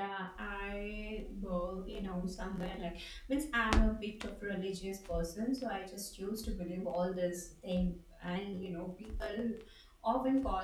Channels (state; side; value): identical; both; correlation 1.00